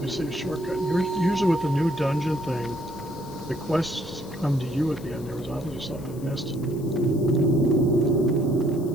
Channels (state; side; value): noise; left; hiss, 22 dB below the sound